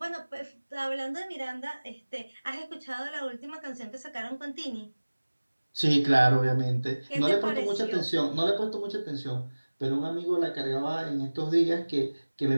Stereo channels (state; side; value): inverted; both; correlation -1.00